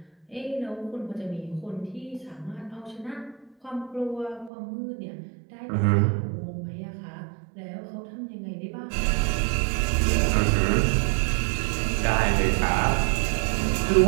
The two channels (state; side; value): drops out; left; at 4.5 s